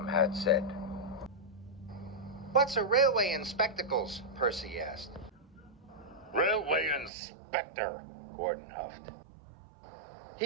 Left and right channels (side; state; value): left; drops out; at 7.1 s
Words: Hatt said. What's a railway in spectacles? Percy asked. Railway inspector, Gordon huffed.